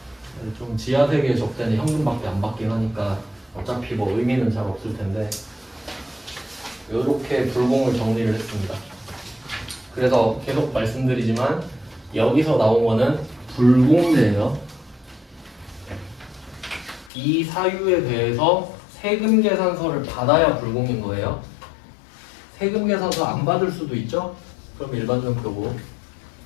좀 지하세계 접대는 현금밖에 안 받긴 하니까 어차피 뭐 의미는 잘 없을 텐데 이렇게 불공을 정리를 했습니다. 그래서 계속 말씀드리지만 여기서 나온 거는 불공제예요. 이 사유에 대해서 세금 계산서를 받아야 불공인 거예요. 세금 계산서 안 받을 수도 있죠? 그럼 일반전표고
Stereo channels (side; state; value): right; drops out; at 17.1 s